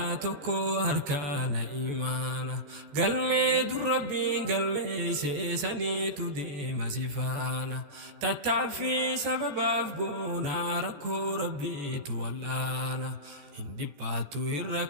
توكو أركان إيمانا قلمي در ربي قلمي سيساني تديم سفانا تتعفي سبب أفقونا ركو ربي تولانا hindi batu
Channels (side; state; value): left; late; 14 ms